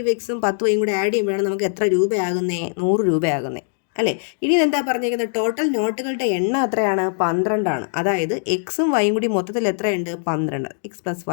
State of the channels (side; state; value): right; silent; digital silence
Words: 10y കൂടെ ആഡ് ചെയ്യുമ്പോഴാണ് നമുക്ക് എത്ര രൂപയാകുന്നേ? 100 രൂപയാകുന്നേ അല്ലേ? ഇനി എന്താ പറഞ്ഞിരിക്കുന്നത്? ടോട്ടൽ നോട്ടുകളുടെ എണ്ണം എത്രയാണ്? 12 ആണ്. അതായത് എക്സും വൈയും കൂടി മൊത്തത്തിൽ എത്രയുണ്ട്? 12. x +